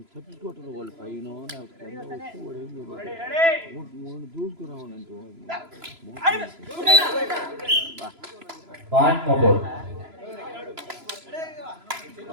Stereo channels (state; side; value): late; left; 3.0 ms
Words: వాళ్ళు పైన మూడు పాయింట్ మోపూర్.